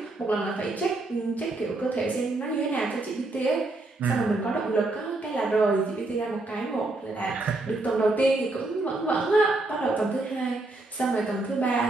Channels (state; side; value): quieter; left; 3.0 dB